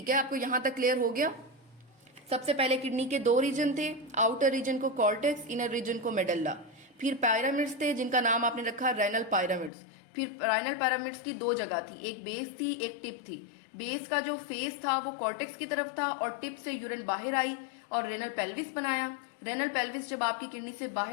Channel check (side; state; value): right; drops out; at 9.7 s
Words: है। आपको यहां तक क्लियर हो गया? सबसे पहले किडनी के 2 रीजन थे, आउटर रीजन को कॉर्टेक्स, इनर रीजन को मेडल्ला। फिर पिरामिड्स थे जिनका नाम आपने रखा रेनल पिरामिड्स। फिर रेनल पिरामिड्स की दो जगह थी, एक बेस थी एक टिप थी। बेस का जो फेस था वो कॉर्टेक्स की तरफ था और टिप से यूरिन बाहर आई और रेनल पेल्विस बनाया। रेनल पेल्विस जब आपकी किडनी से